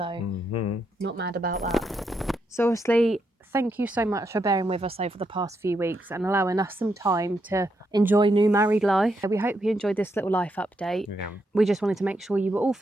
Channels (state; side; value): normal; both; correlation 0.80